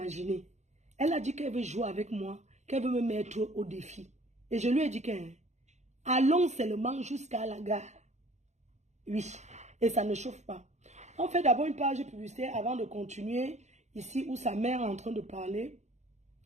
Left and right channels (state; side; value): late; left; 0.33 ms